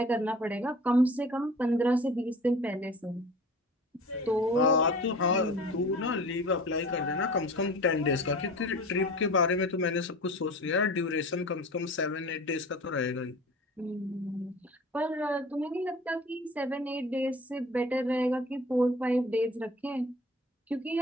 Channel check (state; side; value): normal; both; correlation 0.41